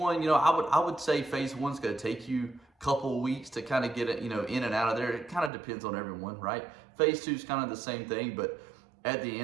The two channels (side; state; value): left; drops out; at 5.5 s